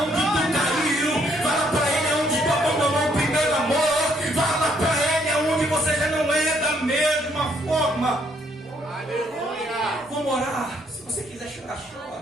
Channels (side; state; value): both; normal; correlation 0.69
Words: tu caiu. Fala para ele aonde tu abandonou o primeiro amor. Fala para ele aonde você já não é da mesma forma. Aleluia. Vamos orar. Se você quiser chorar, chora.